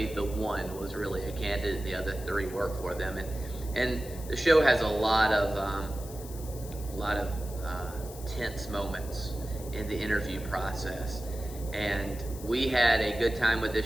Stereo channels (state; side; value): noise; left; hiss, 16 dB below the sound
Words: the one was really a candidate, the other 3 work for them. And the show has a lot of tense moments in the interview process. And we had a good time with